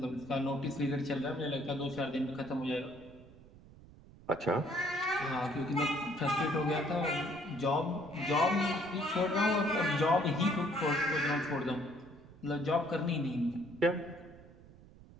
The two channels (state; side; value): noise; right; rumble, 21 dB below the sound